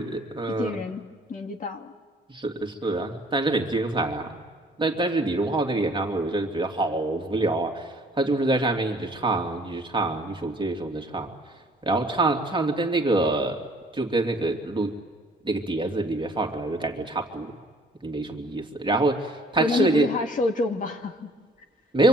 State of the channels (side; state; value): both; normal; correlation 0.57